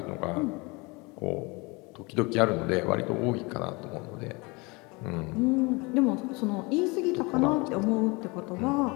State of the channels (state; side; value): quieter; right; 26.9 dB